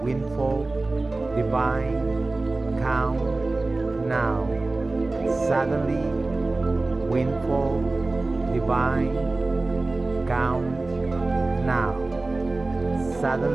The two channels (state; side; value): quieter; left; 3.2 dB